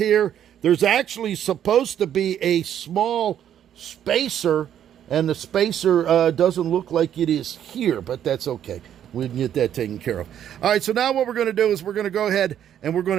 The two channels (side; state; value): left; quieter; 10.1 dB